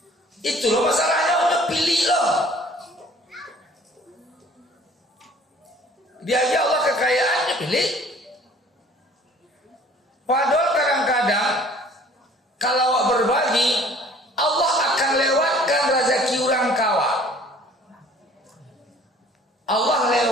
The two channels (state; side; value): normal; both; correlation 0.53